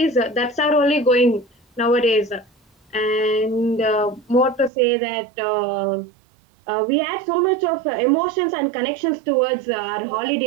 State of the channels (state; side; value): drops out; left; at 4.7 s